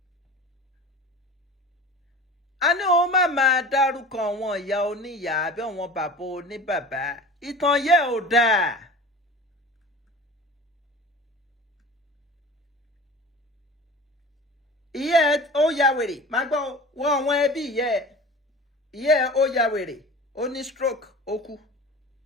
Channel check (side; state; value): both; normal; correlation 0.37